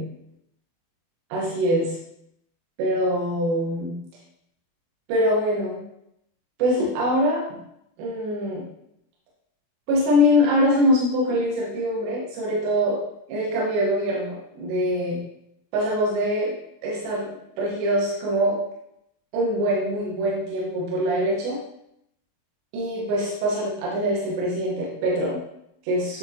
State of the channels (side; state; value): left; late; 24 ms